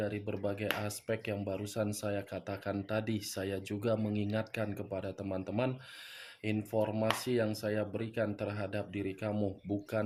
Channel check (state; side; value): identical; both; correlation 1.00